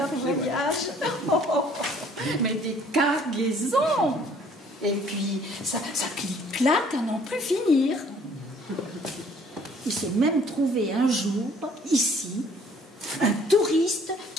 voyage. Mais des cargaisons! Et puis, ça clique-claque à n'en plus finir. Il s'est même trouvé un jour, ici, un touriste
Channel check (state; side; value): normal; both; correlation 0.58